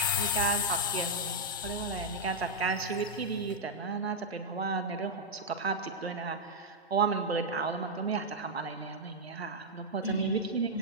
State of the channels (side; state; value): both; normal; correlation -0.02